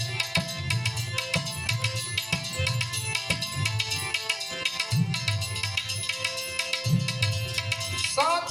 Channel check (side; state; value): both; identical; correlation 1.00